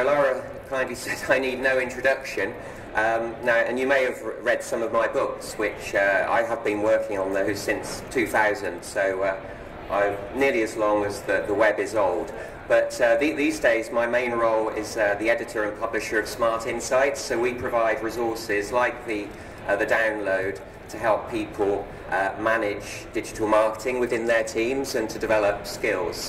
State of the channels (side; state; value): both; identical; correlation 1.00